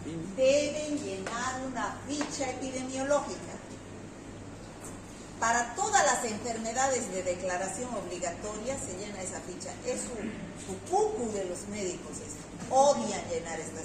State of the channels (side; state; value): both; identical; correlation 1.00